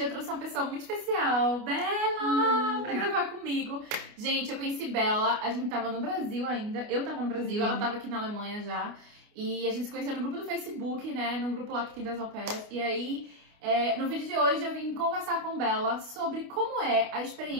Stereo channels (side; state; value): left; late; 29 ms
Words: trouxe uma pessoa muito especial, Bela, pra gravar comigo. Gente, eu conheci Bela, a gente tava no Brasil ainda, eu tava no Brasil, ela tava aqui na Alemanha já. E a gente se conheceu no grupo do Facebook, né, no grupo lá que tem das au pairs. E aí, no vídeo de hoje eu vim conversar com Bela sobre como é a